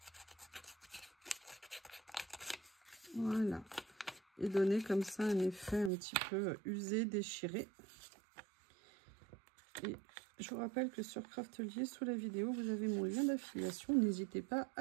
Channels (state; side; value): drops out; left; at 5.9 s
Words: Voilà. Et donner comme ça un effet un petit peu usé, déchiré. Et je vous rappelle que sur Craftelier, sous la vidéo, vous avez mon lien d'affiliation. N'hésitez pas